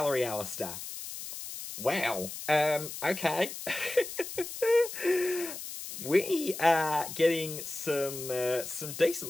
Alistair. Wow. Okay. We are getting some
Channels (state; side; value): noise; left; hiss, 9 dB below the sound